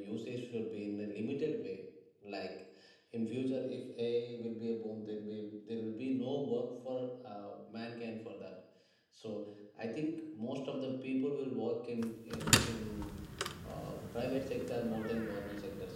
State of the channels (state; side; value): identical; both; correlation 1.00